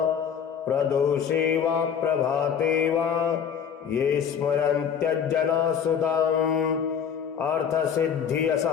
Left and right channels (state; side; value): quieter; right; 7.7 dB